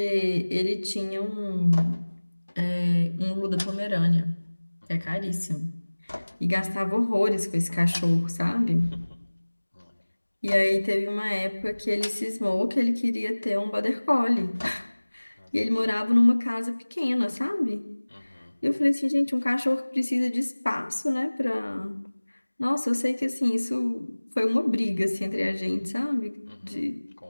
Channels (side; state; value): both; inverted; correlation -1.00